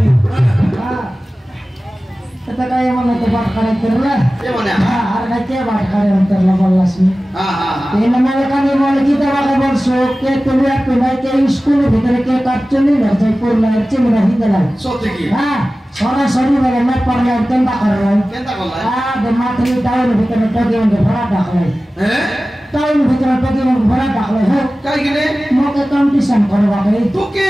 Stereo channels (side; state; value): both; normal; correlation 0.96